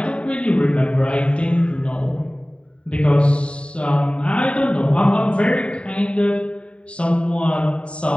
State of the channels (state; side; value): late; right; 0.058 ms